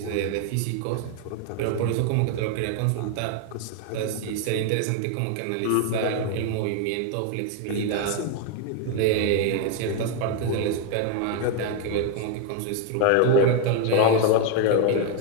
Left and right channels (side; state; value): both; different; correlation 0.01